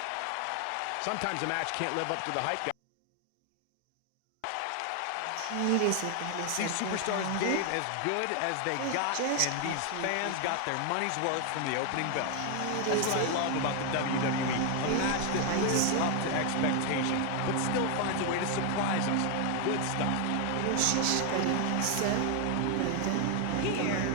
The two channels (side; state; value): both; different; correlation 0.01